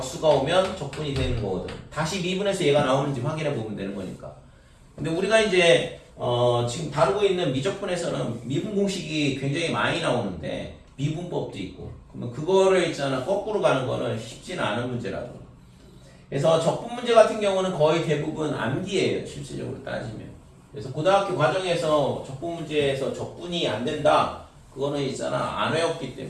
오면 적분이 되는 거거든. 다시 미분에서 얘가 나오는지 확인해 보면 되는 거니까. 근데 우리가 이제 지금 다루고 있는 미적분에서는 미분 공식이 굉장히 많이 나오는데 미분법도 있고, 그러면 그거를 있잖아 거꾸로 가는 거는 쉽지는 않은 문제라고. 그래서 적분 문제 같은 경우는 거의 대부분 암기예요 실질적으로 따지면. 그래서 고등학교 과정에서 적분 문제에서 적분이 안 된다, 그거는 있잖아 안 외웠기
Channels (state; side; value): identical; both; correlation 1.00